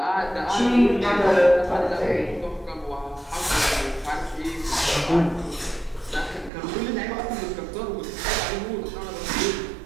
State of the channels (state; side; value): drops out; left; at 6.5 s